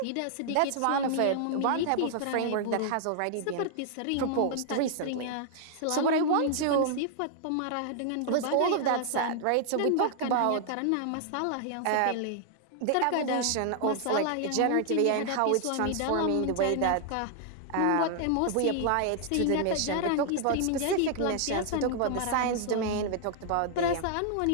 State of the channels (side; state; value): both; different; correlation 0.00